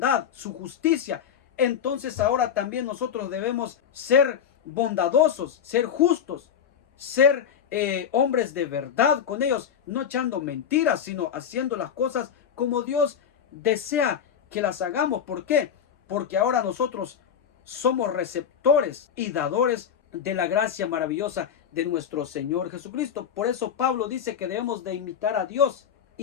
su justicia, entonces ahora también nosotros debemos ser bondadosos, ser justos, ser hombres de verdad con ellos, no echando mentiras, sino haciendo las cosas como Dios desea que las hagamos. ¿Por qué? Porque ahora nosotros somos receptores y dadores de la gracia maravillosa de nuestro Señor Jesucristo. Por eso Pablo dice que debemos de imitar a Dios,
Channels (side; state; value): right; quieter; 8.2 dB